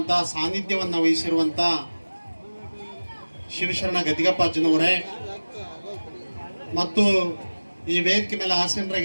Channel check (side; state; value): both; inverted; correlation -1.00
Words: ಸಾನ್ನಿಧ್ಯವನ್ನು ವಹಿಸಿರುವಂಥ ಶಿವಶರಣ ಗದ್ದಿಗಪ್ಪಾಜಿನವರೇ ಮತ್ತು ಈ ವೇದಿಕೆ ಮೇಲೆ